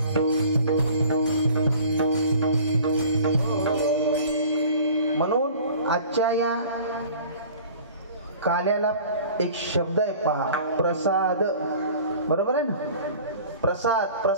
म्हणून आजच्या या काल्याला एक शब्द आहे पहा, प्रसाद. बरोबर आहे ना? प्रसाद.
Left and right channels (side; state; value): both; inverted; correlation -0.46